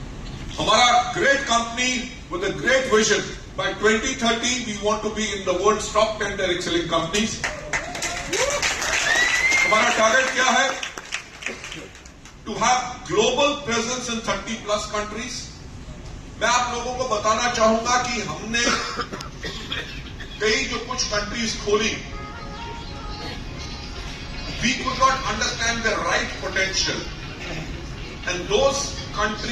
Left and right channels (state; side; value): identical; both; correlation 1.00